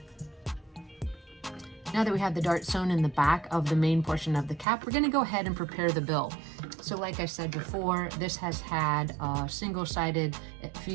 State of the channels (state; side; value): drops out; left; at 4.7 s